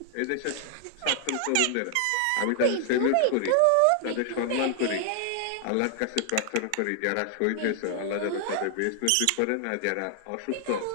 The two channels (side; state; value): both; different; correlation 0.00